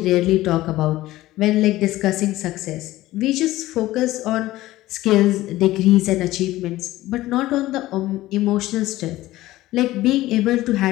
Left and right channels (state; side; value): quieter; right; 16.6 dB